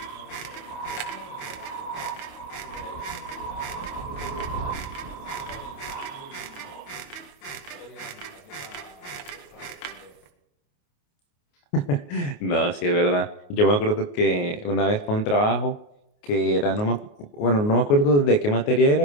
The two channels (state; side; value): late; right; 28 ms